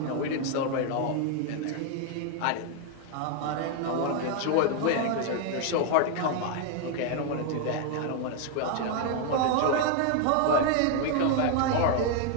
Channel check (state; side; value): different; both; correlation 0.00